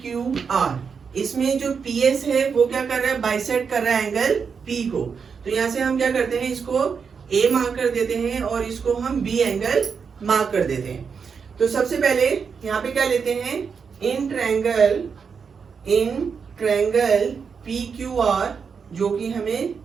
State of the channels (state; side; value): quieter; left; 6.0 dB